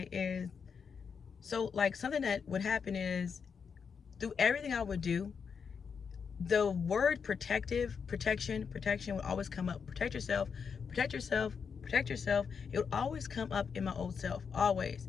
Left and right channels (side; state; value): right; quieter; 6.2 dB